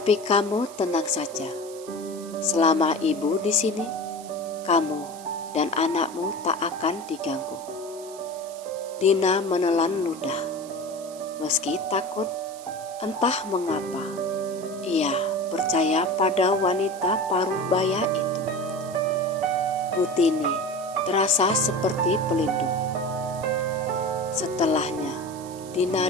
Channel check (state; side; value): noise; right; hiss, 18 dB below the sound